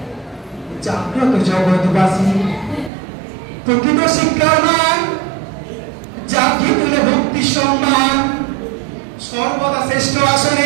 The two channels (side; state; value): left; drops out; at 2.9 s